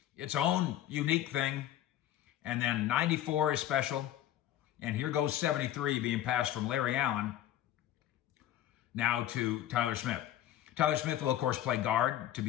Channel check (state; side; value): quieter; right; 12.3 dB